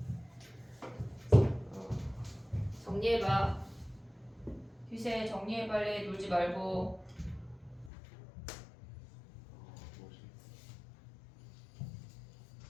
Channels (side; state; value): right; drops out; at 7.9 s